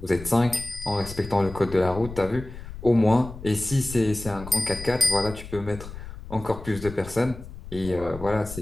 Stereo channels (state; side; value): noise; left; rumble, 13 dB below the sound